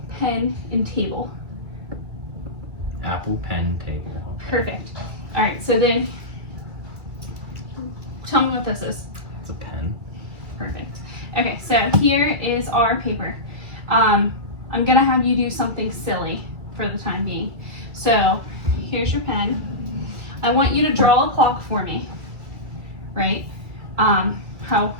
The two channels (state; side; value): late; left; 2.3 ms